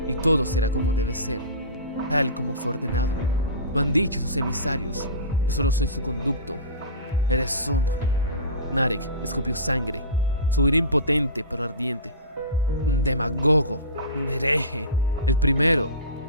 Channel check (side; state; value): both; inverted; correlation -0.30